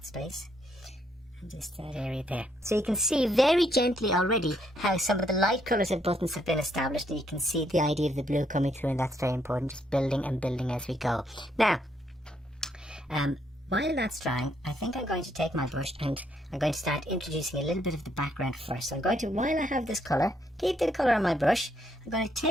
space. And just that area there. So you can see very gently already how some of the light colours of buttons have been established, and you can see the idea of the blue coming through, and that's very important, just building and building as we go. Now, while that's drying, I think I'm going to take my brush and I'm going to start introducing a little bit of the background first. So I'm going to, while I have this colour, keep the colour on my brush, I'm going to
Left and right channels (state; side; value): normal; both; correlation 0.73